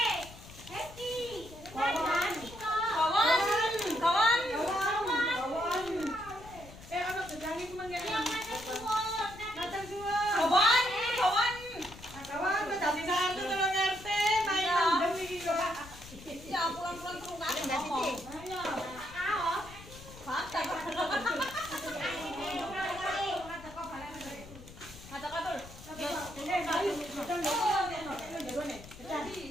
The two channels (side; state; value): left; noise; rumble, 17 dB below the sound